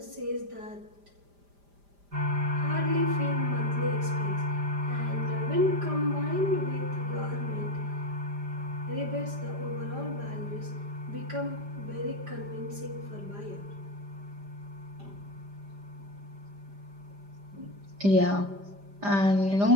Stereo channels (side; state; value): left; late; 5.0 ms